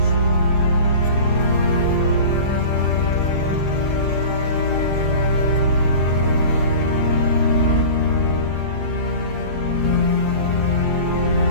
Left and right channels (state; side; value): late; right; 7.4 ms